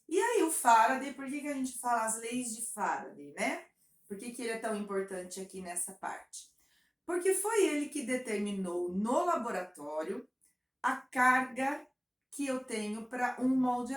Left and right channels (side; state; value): both; identical; correlation 1.00